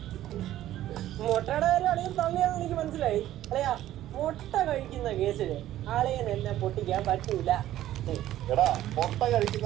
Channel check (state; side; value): quieter; left; 13.4 dB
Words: മുട്ടയുടെ കാര്യം അളിയൻ തള്ളിയാന്ന് എനിക്ക് മനസ്സിലായി. അല്ലയാ മുട്ട കഴിക്കുന്ന കേസില് ആളിയൻ എന്നെ പൊട്ടിക്കാൻ പറ്റൂല. എടാ മുട്ട